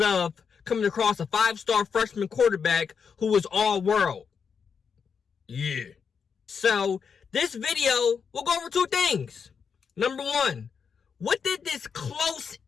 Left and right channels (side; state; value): right; quieter; 6.3 dB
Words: of coming across a 5-star freshman quarterback who was all world. Yeah. So this video, we'll go over 2 things. Number 1, what did this close